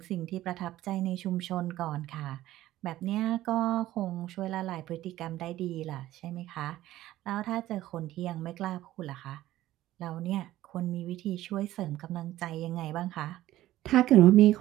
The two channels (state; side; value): quieter; left; 14.9 dB